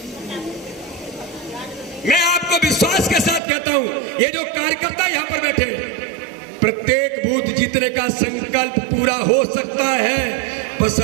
मैं आपको विश्वास के साथ कहता हूं, ये जो कार्यकर्ता यहां पर बैठे हैं, प्रत्येक बूथ जीतने का संकल्प पूरा हो सकता है,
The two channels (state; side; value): drops out; left; at 3.4 s